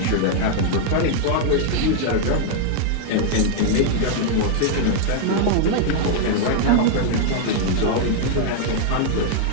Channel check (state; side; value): different; both; correlation -0.01